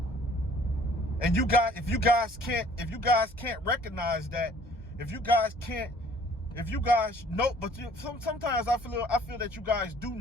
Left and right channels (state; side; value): normal; both; correlation 0.56